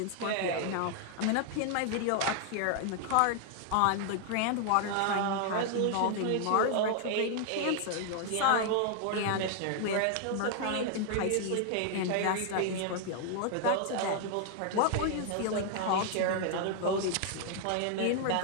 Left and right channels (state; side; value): different; both; correlation 0.00